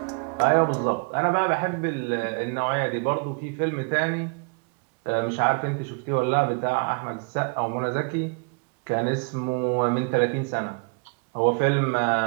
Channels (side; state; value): left; quieter; 36.7 dB